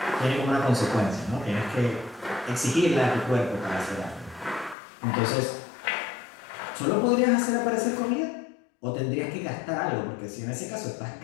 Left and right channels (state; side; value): drops out; right; at 4.8 s